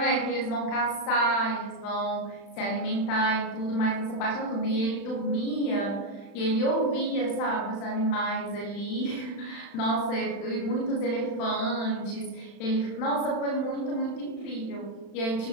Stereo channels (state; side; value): late; right; 35 ms